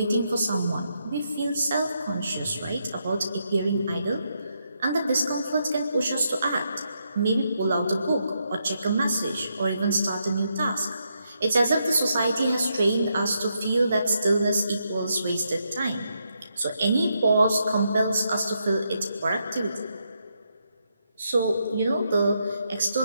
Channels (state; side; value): inverted; both; correlation -0.80